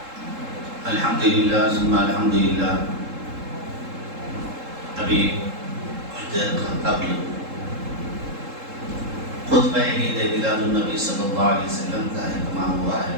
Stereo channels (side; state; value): left; late; 3.7 ms